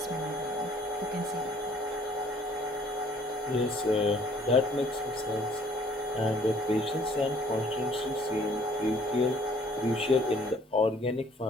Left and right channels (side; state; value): both; normal; correlation 0.58